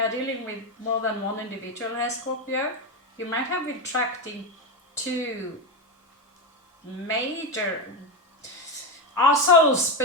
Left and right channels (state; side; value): normal; both; correlation 0.12